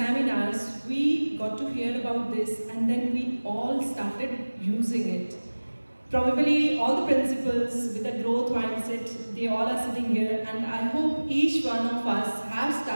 we got to hear about this and then we all started using it. Probably all the principals with a growth mindset, they all are sitting here, and I hope each one of us have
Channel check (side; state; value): both; inverted; correlation -1.00